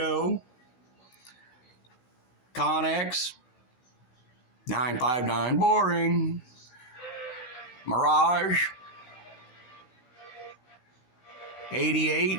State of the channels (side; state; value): right; late; 16 ms